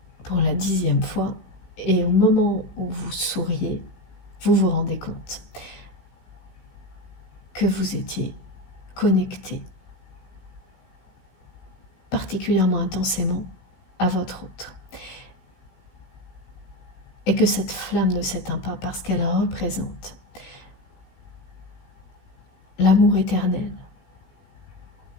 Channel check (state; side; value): late; right; 16 ms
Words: pour la 10e fois. Et au moment où vous souriez, vous vous rendez compte que vous étiez connecté particulièrement intensément à votre autre. Et que cette flamme ne s'éteint pas parce qu'elle représente l'amour éternel.